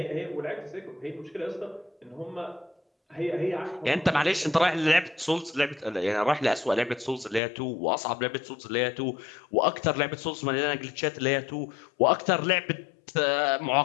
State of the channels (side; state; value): right; drops out; at 7.4 s